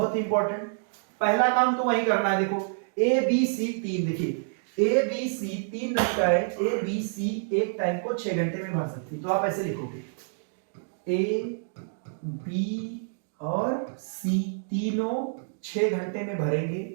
ही इंपॉर्टेंट। पहला काम तो वही करना है। देखो ए बी सी 3, देखिए A B C 3 नलिकाएं A B C एक टाइम को 6 घंटे में भर सकती है। तो आप ऐसे लिखोगे ए बी और सी तीनों 6 घंटे में भरेंगे,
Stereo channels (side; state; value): left; silent; digital silence